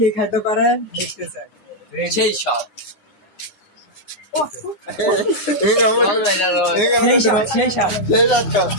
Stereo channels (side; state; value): right; late; 9.6 ms